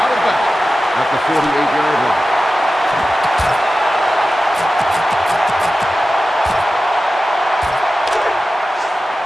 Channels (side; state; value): both; normal; correlation 0.94